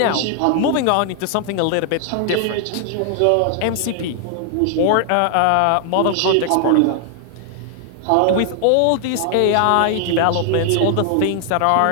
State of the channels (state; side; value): different; both; correlation 0.00